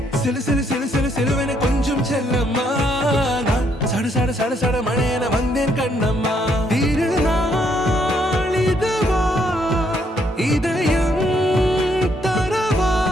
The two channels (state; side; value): normal; both; correlation 0.72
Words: சிலு சிலு சிலு சிலு சிலுவென கொஞ்சம் செல்லம்மா நான் சட சட சட சட மழையென வந்தேன் கண்ணம்மா திருநாள் இதுவா இதயம் தரவா